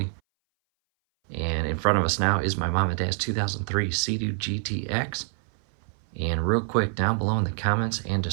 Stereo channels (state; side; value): silent; left; 59 dB below the other